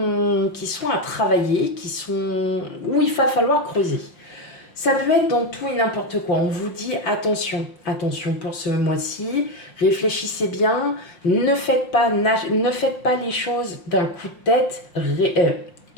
à travailler, où il va falloir creuser. Ça peut être dans tout et n'importe quoi. On vous dit attention, attention pour ce mois-ci, réfléchissez bien, ne faites pas les choses d'un coup de tête,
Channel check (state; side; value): late; right; 5.6 ms